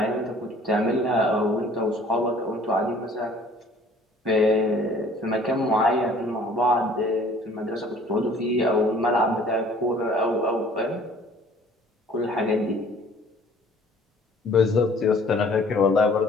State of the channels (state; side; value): normal; both; correlation 0.53